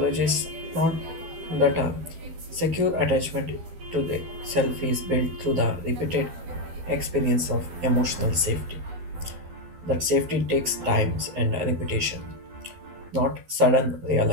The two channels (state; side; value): late; left; 12 ms